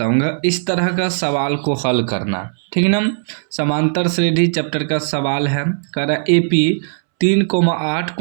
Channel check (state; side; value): silent; left; 68 dB below the other